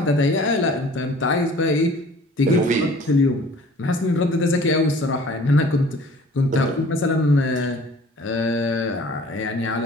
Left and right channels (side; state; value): both; normal; correlation 0.49